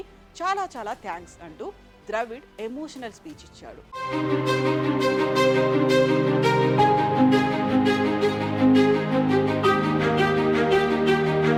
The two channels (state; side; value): identical; both; correlation 1.00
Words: చాలా చాలా థ్యాంక్స్ అంటూ ద్రవిడ్ ఎమోషనల్ స్పీచ్ ఇచ్చాడు.